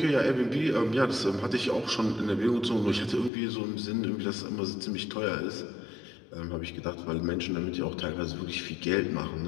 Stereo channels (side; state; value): right; drops out; at 3.3 s